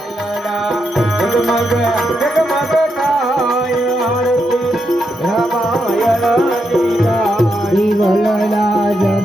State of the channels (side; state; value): both; normal; correlation 0.83